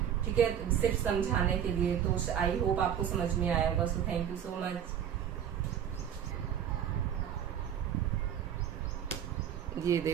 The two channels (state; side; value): quieter; left; 9.3 dB